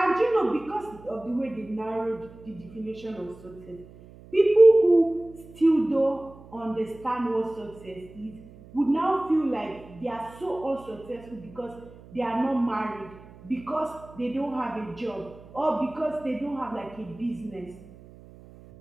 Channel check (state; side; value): noise; right; hum, 20 dB below the sound